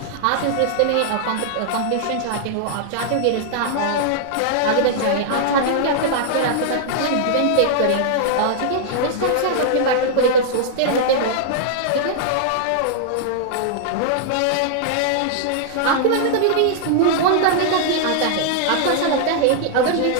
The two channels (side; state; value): both; different; correlation -0.01